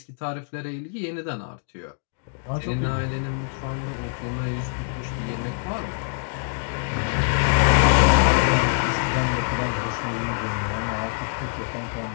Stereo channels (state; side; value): silent; right; digital silence